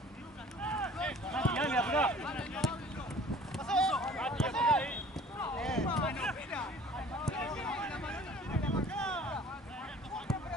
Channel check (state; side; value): normal; both; correlation 0.49